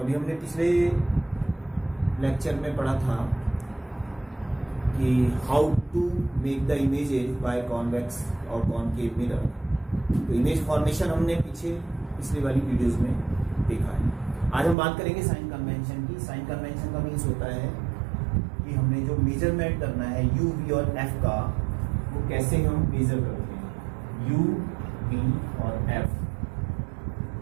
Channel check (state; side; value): drops out; left; at 14.8 s